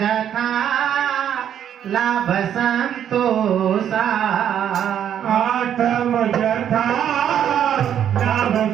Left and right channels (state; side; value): quieter; left; 9.6 dB